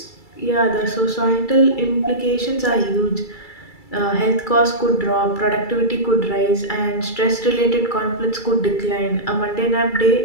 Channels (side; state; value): right; late; 2.3 ms